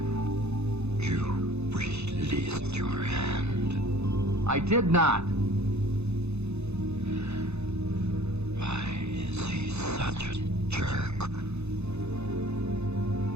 You released your hand. I did not. Why is he such a jerk?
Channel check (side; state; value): left; late; 0.81 ms